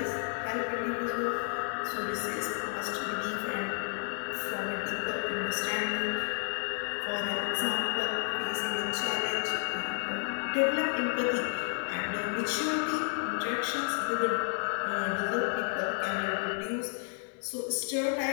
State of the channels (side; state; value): right; silent; 57 dB below the other